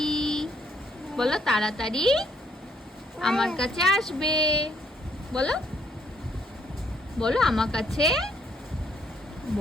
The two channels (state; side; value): normal; both; correlation 0.69